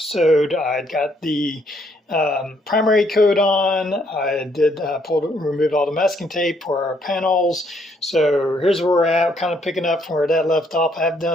I got the primary coat on. I did remove all the masking tape for our panels. So here's where we're at, kind of picking up from where that left off. I've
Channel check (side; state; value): both; normal; correlation 0.70